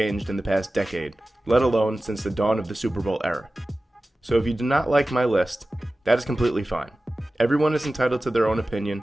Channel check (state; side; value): normal; both; correlation 0.96